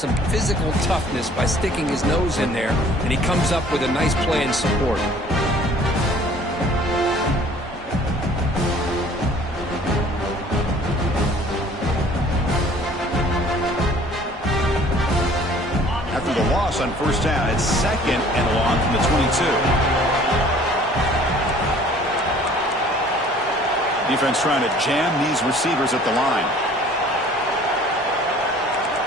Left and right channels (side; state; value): both; normal; correlation 0.52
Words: physical toughness by sticking his nose in there, and he comes up with a nice play in support. After the loss on first down, it's 2nd and long from the 22. Defense trying to jam these receivers at the line.